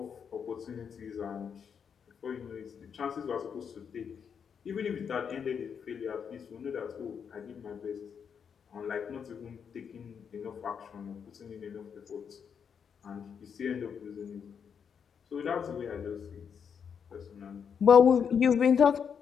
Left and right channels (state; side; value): quieter; right; 7.1 dB